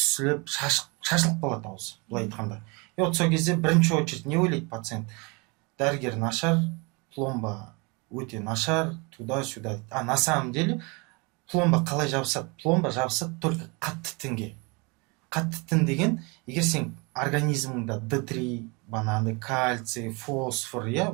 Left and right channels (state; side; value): quieter; left; 29.2 dB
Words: шашылып қалады ауыз, былай айтқанда. И вот сол кезде бірінші очередь не ойлайды пациент? Дәрігер нашар, пломба өте нашар, туда-сюда. А на самом деле пломба қалай жабысады? Пломба жабысады только қатты тінге. Қатты тін деген, егер сен организміңда D3, бананды, кальций, фосфор,